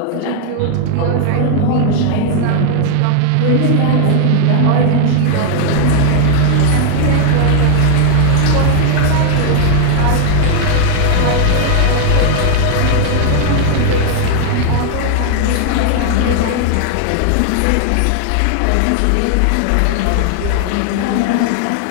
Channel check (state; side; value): different; both; correlation 0.00